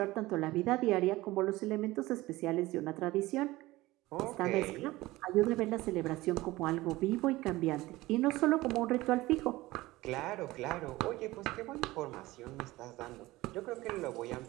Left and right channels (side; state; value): left; quieter; 18.9 dB